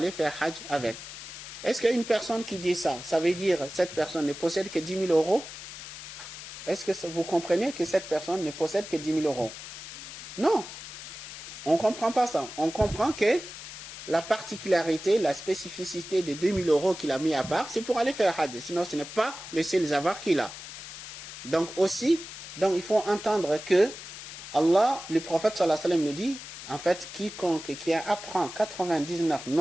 faire Hajj avec. Est-ce qu'il y a une personne qui dit ça? Ça veut dire que cette personne ne possède que 10 000 €? Est-ce que vous comprenez que cette personne ne possède que 10 000 €? Non. On ne comprend pas ça. On comprend que la particularité, la spécificité des 2 000 € qu'il a mis à part, c'est pour aller faire Hajj. Sinon, ce n'est pas le seul avoir qu'il a. Donc aussi, il faut entendre que Allah, le prophète sallallahu alayhi wa sallam nous dit, en fait, quiconque qui apprend 99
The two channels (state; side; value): noise; left; hiss, 12 dB below the sound